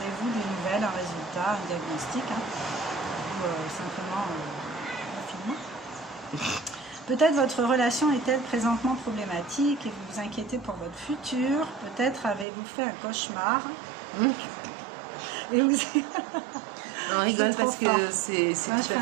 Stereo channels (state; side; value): drops out; left; at 12.5 s